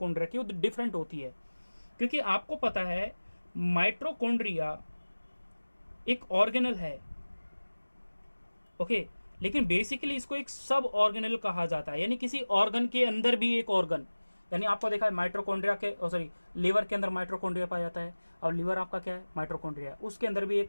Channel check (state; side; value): inverted; both; correlation -1.00